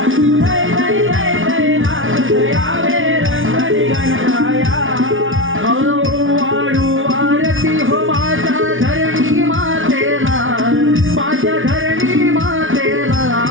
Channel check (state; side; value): late; left; 0.57 ms